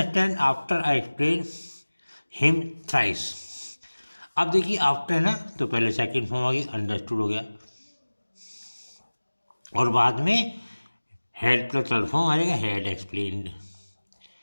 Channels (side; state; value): both; inverted; correlation -1.00